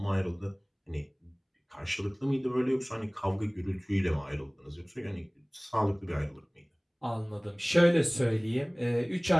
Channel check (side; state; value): both; identical; correlation 1.00